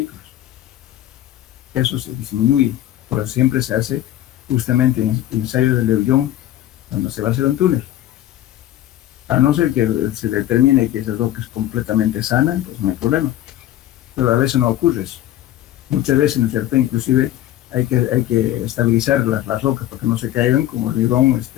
Eso se disminuye, pero siempre se hace justamente en ensayos de Leuillón, cuando se va a hacer un túnel. A no ser que se determine que esa roca es completamente sana, pues no hay problema. Pero a veces no ocurre eso. Muchas veces, ¿no es cierto?, inclusive hay que estabilizar las rocas para que no se caigan como hormigón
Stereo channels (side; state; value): right; quieter; 13.3 dB